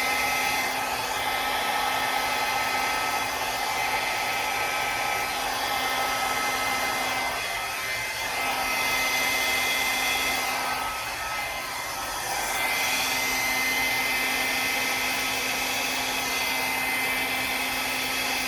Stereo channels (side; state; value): both; identical; correlation 1.00